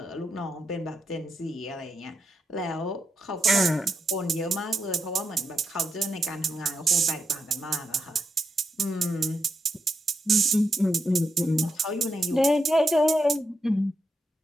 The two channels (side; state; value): both; normal; correlation 0.82